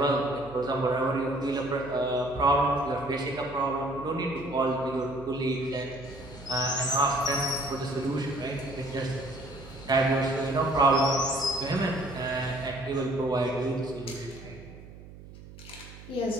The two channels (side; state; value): right; noise; hum, 17 dB below the sound